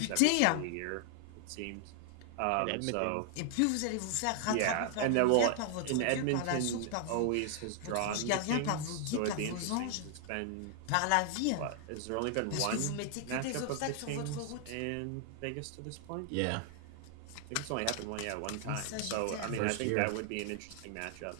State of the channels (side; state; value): both; different; correlation 0.00